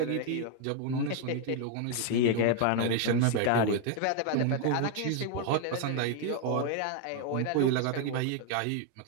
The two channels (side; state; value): both; different; correlation 0.01